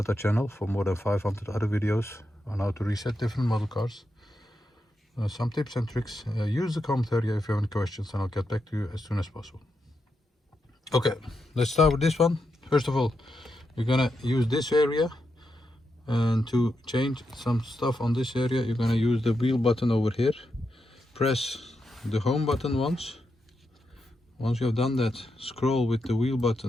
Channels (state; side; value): normal; both; correlation 0.85